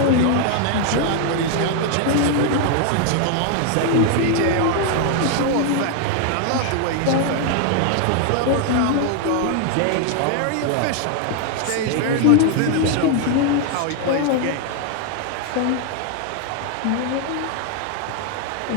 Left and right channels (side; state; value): both; different; correlation 0.00